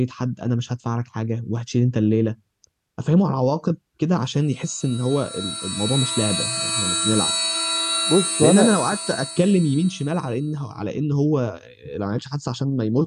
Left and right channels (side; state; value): both; identical; correlation 1.00